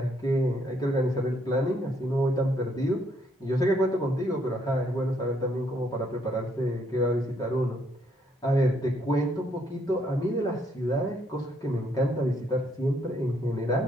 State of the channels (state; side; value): normal; both; correlation 0.71